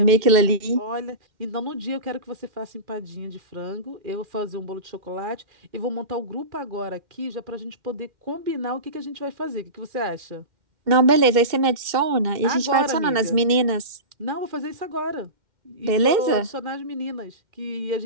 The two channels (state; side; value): late; left; 2.1 ms